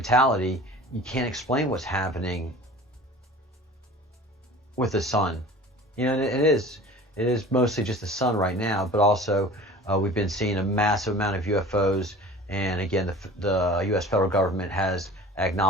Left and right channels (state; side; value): normal; both; correlation 0.42